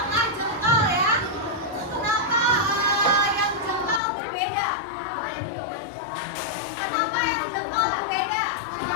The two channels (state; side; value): drops out; right; at 4.0 s